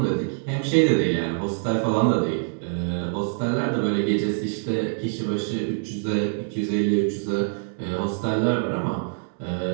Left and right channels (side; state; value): left; silent; digital silence